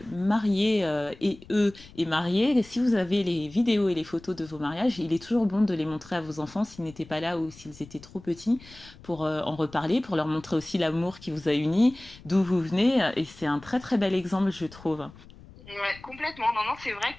mariés et mariés, si vous avez les vidéos et les photos de vos mariages, il est toujours bon de les montrer à vos enfants s'ils n'étaient pas là ou s'ils étaient trop petits pour en reparler, pour leur montrer aussi l'amour qui vous a unis, d'où vous venez. Et c'est un très très bel exemple, je trouve. Ouais, complètement. Non, c'est vrai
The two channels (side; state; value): left; noise; rumble, 21 dB below the sound